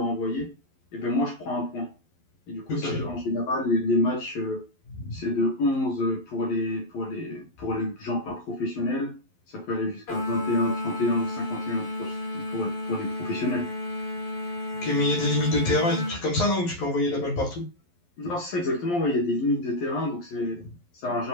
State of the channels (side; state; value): right; late; 11 ms